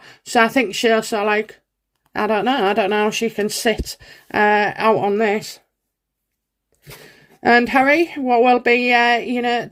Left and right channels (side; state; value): both; identical; correlation 1.00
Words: So I think she'll I don't know how she can sit out on this. And Harry, what will be,